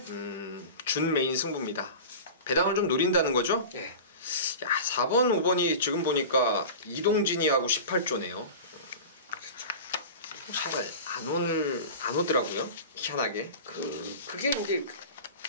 준메인 승부입니다. 배당을 좀 노린다는 거죠? 네. 야, 4번, 5번이 지금 보니까 이동진이하고 18조네요. 잘 안 오더라고요. 희한하게. 그게 이제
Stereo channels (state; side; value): inverted; both; correlation -0.32